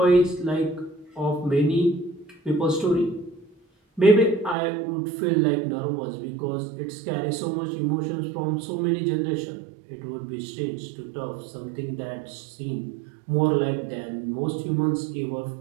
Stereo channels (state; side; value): drops out; left; at 4.5 s